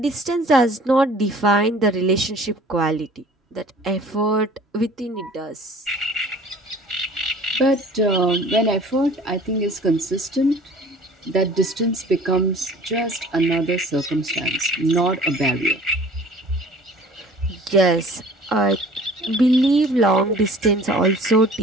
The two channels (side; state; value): both; normal; correlation 0.49